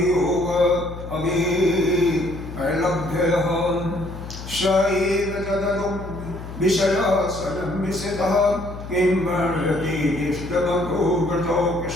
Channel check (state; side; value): noise; left; hum, 11 dB below the sound